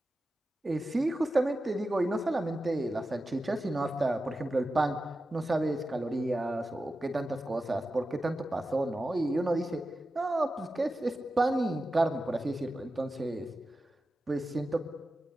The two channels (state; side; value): normal; both; correlation 0.92